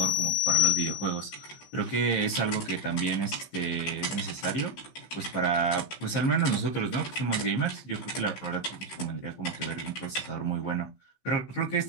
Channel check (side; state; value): right; late; 15 ms